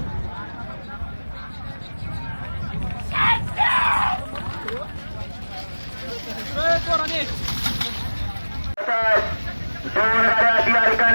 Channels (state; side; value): inverted; both; correlation -1.00